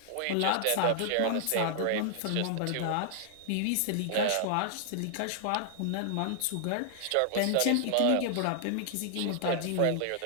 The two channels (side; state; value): both; different; correlation -0.01